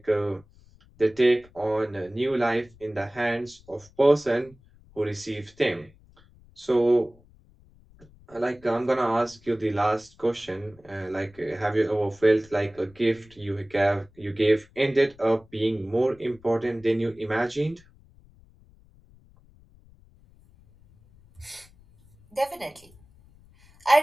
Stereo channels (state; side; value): noise; left; rumble, 27 dB below the sound